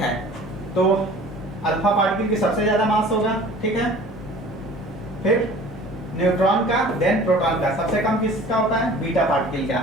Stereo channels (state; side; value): normal; both; correlation 0.46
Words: तो अल्फा पार्टिकल की सबसे ज्यादा मास होगा, ठीक है। फिर न्यूट्रॉन का, देन प्रोटॉन का, सबसे कम किसका होता है बीटा पार्टिकल का,